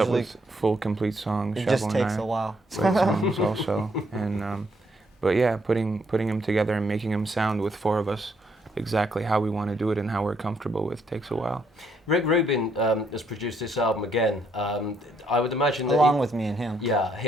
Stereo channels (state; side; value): normal; both; correlation 0.72